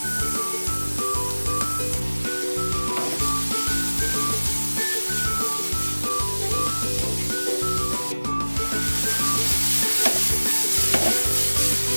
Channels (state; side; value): inverted; both; correlation -1.00